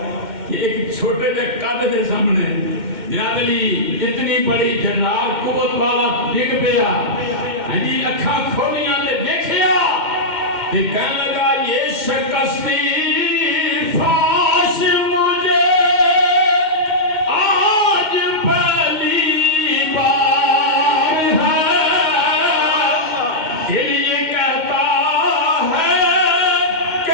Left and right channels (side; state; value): left; late; 2.1 ms